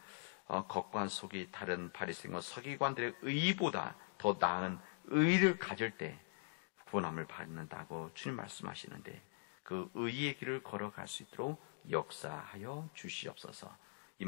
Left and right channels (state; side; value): silent; right; digital silence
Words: 겉과 속이 다른 바리새인과 서기관들의 의보다 더 나은 의를 가질 때 구원함을 받는다고 주님 말씀하시는데 그 의의 길을 걸어갈 수 있도록 역사하여 주시옵소서. 이